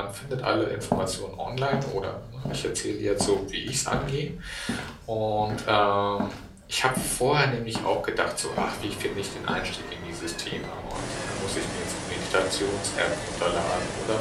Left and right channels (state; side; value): identical; both; correlation 1.00